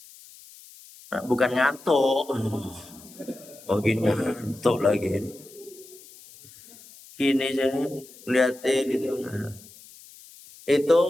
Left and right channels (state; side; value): noise; left; hiss, 21 dB below the sound